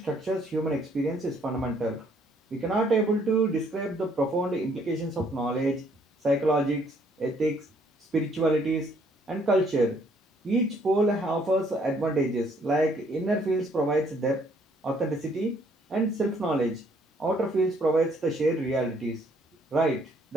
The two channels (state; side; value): normal; both; correlation 0.65